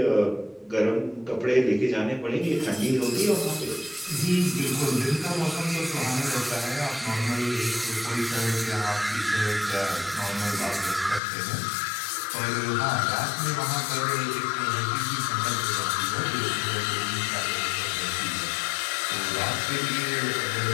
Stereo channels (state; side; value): drops out; right; at 11.2 s